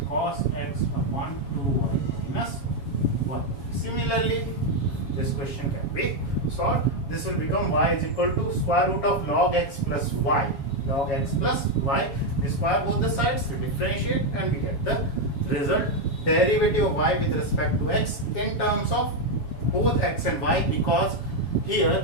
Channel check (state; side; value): late; right; 7.3 ms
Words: cos x upon 2y minus 1. Similarly, this question can be solved. This will become y is equal to square root of log x plus y. Log x plus y. We square both the sides, we differentiate and we get the result. Derivative of y with respect to x in terms of both x and y, because